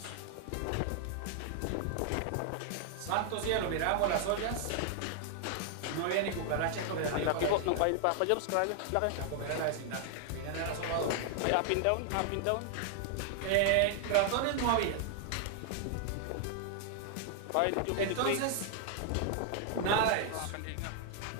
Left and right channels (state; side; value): different; both; correlation 0.00